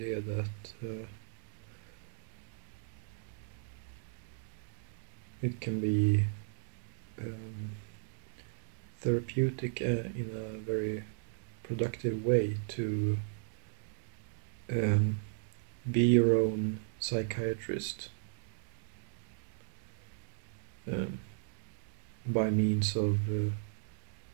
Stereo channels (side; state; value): left; silent; digital silence